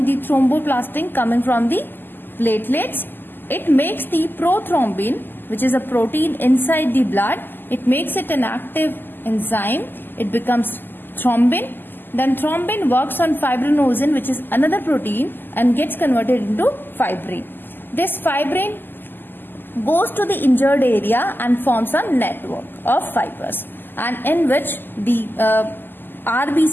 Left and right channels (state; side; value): late; right; 0.092 ms